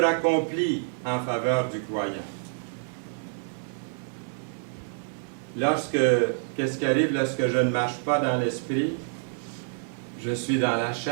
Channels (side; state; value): left; silent; digital silence